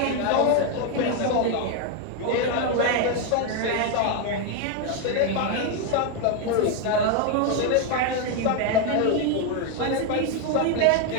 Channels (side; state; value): both; different; correlation 0.01